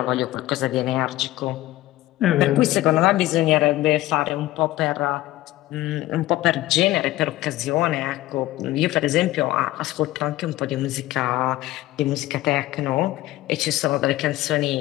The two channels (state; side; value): quieter; right; 16.3 dB